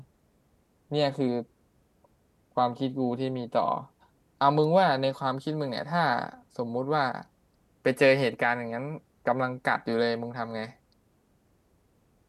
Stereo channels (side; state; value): both; identical; correlation 1.00